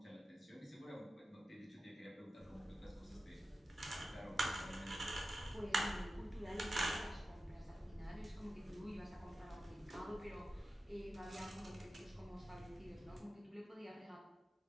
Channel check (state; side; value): normal; both; correlation 0.93